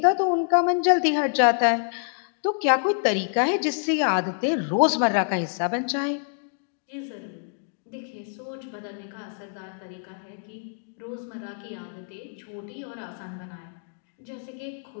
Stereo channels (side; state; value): right; silent; digital silence